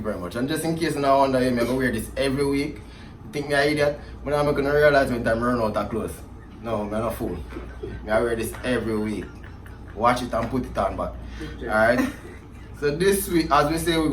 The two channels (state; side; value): identical; both; correlation 1.00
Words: very much. And just in case you now wonder, I'm gonna wear this every week. You think me an idiot? But I'm gonna realize when time run out of clothes. No, I'm not a fool. I wear this every week. Watch it and put it on back. Alright? So this week, as we say, we're